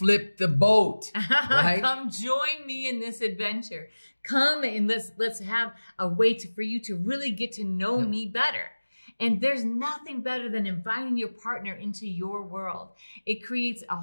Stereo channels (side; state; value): both; inverted; correlation -1.00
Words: the boat, right? Come join me in this adventure. Come and let's have a way for you to really get to know me better. And there's nothing better than inviting your partner into your world. It creates a